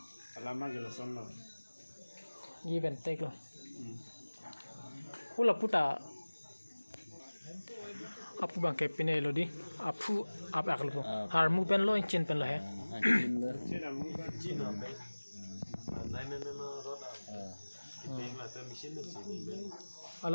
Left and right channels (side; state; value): both; inverted; correlation -1.00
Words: alama gelo sono give and take lo hula puta apu bang ke pine lo di apu ap akal po har mu pen lo chin pen lo he